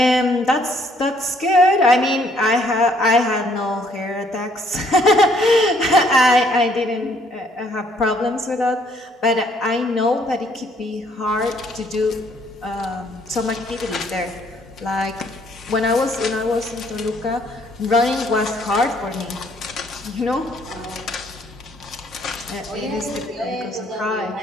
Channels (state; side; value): normal; both; correlation 0.65